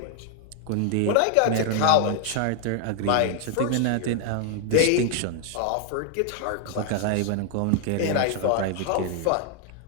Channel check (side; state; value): both; different; correlation 0.00